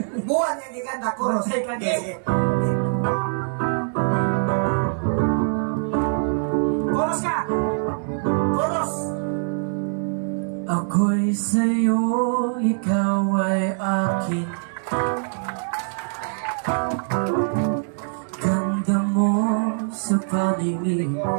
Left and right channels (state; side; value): silent; left; 63 dB below the other